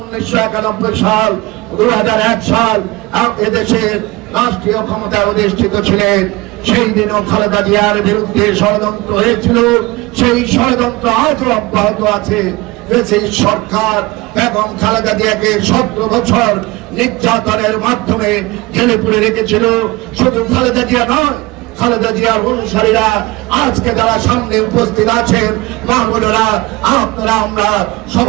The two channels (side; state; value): left; quieter; 21.6 dB